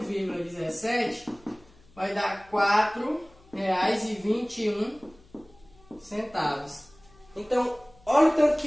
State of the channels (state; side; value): noise; left; hum, 27 dB below the sound